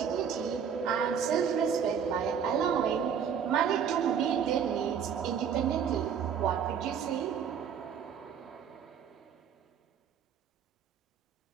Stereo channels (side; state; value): left; quieter; 7.6 dB